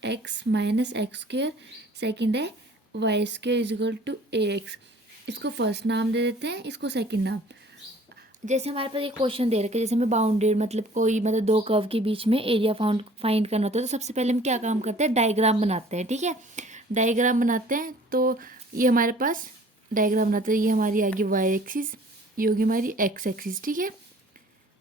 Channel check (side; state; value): both; normal; correlation 0.52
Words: minus x square. Second है Y square is equal to ax। इसको फर्स्ट नाम दे देते हैं, इसको सेकंड नाम। जैसे हमारे पास एक क्वेश्चन दे रखे, जैसे हमें बाउंडेड मतलब कोई मतलब दो कर्व के बीच में एरिया फाइंड करना होता है, तो सबसे पहले हम क्या काम करते हैं, डायग्राम बनाते हैं। ठीक है, डायग्राम बनाते हैं। तो ये हमारे पास डायग्राम बनाते हैं, ये हमारी आगे वाई एक्सिस, ये होगी हमारी एक्स एक्सिस। ठीक है,